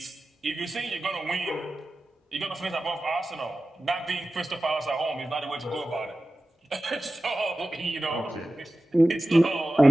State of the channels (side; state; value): both; normal; correlation 0.95